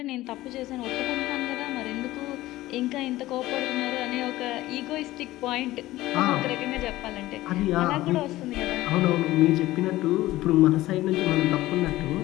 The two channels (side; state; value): right; quieter; 16.8 dB